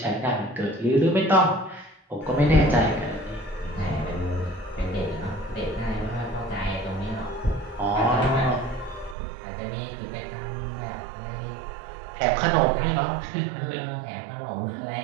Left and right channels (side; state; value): left; drops out; at 9.2 s